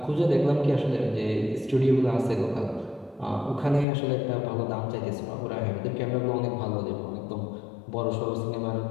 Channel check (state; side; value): drops out; right; at 3.9 s